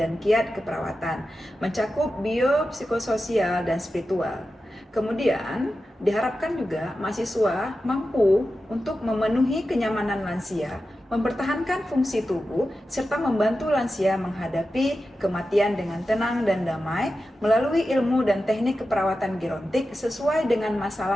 kiat keperawatan, mencakup bio, psikososial, dan spiritual. Kemudian diharapkan juga mahasiswa mampu untuk memenuhi kenyamanan lansia, mempertahankan fungsi tubuh, serta membantu lansia menghadapi kematian dengan tenang dan damai melalui ilmu dan teknik keperawatan gerontik sesuai dengan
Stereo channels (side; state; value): both; normal; correlation 0.92